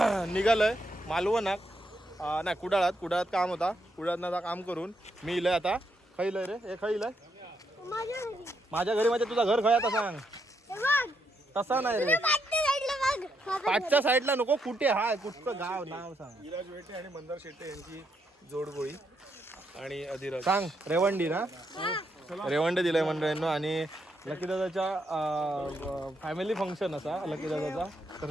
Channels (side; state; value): both; normal; correlation 0.78